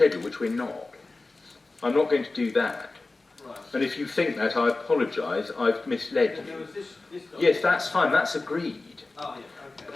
which we're not. I'm not going to do that. Right. And if you think that, I apologise, I've misled There you. was this Yes, that's fine, that's agreed. Oh, yeah, okay.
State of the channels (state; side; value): quieter; right; 3.4 dB